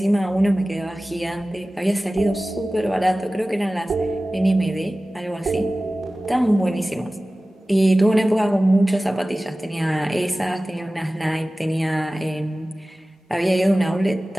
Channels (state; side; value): normal; both; correlation 0.97